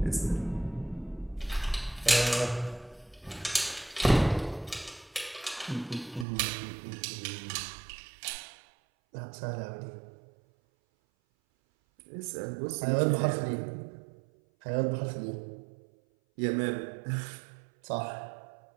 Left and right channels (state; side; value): drops out; left; at 6.2 s